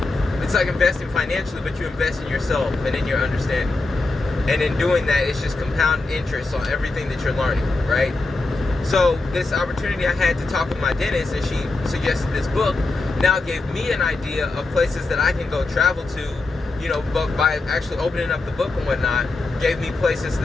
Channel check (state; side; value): quieter; right; 3.3 dB